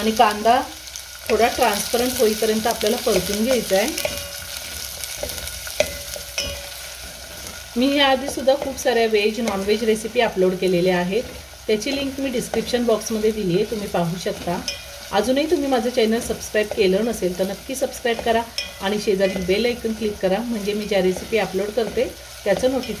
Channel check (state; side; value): identical; both; correlation 1.00